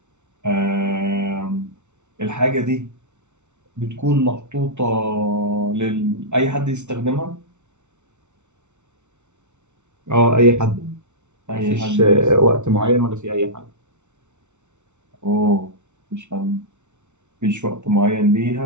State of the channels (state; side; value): late; left; 0.83 ms